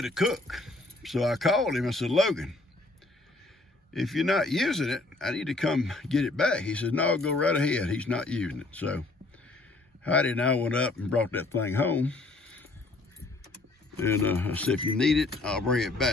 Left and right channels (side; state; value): right; quieter; 3.2 dB